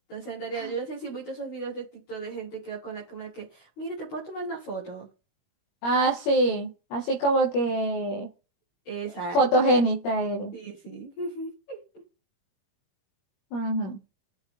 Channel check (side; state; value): right; late; 21 ms